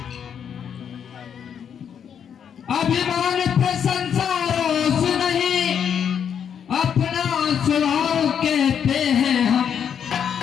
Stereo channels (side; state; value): right; quieter; 8.1 dB